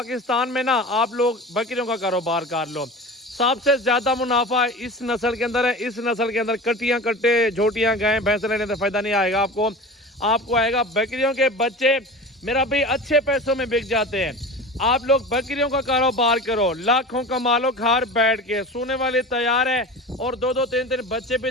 में ना, आप लोग बकरियों का कारोबार कर लो। सबसे ज़्यादा मुनाफा इस नस्ल के अंदर है। इस नस्ल के अंदर कटियां कट्टे झोटियां गायें भैंस लेने से फ़ायदा नहीं आएगा आपको आएगा बकरियों के बच्चे मेरा भाई अच्छे पैसों में बिक जाते हैं। आप लोग बकरियों का कारोबार करो, लाखों कमा लो घर बैठ के। सोने वाली तैयार है और 2-2 3-3 बच्चे भी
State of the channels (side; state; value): both; normal; correlation 0.33